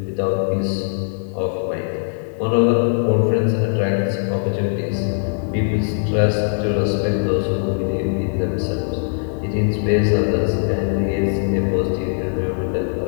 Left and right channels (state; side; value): silent; right; 65 dB below the other